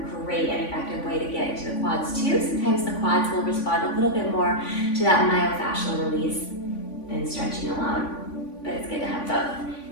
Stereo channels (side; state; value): right; late; 3.5 ms